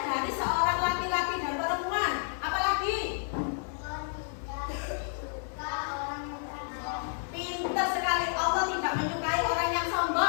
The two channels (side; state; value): right; silent; digital silence